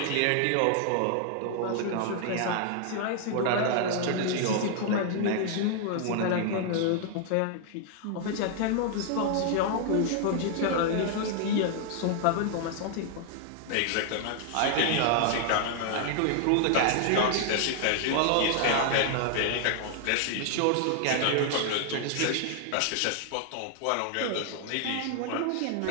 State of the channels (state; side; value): different; both; correlation 0.00